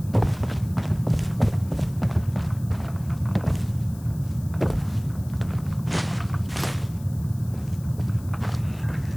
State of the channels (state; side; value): noise; left; hiss, 22 dB below the sound